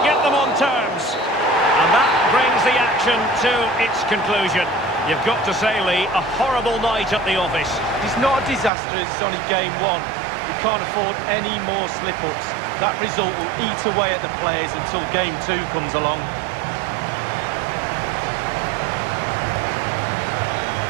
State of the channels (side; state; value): left; drops out; at 8.7 s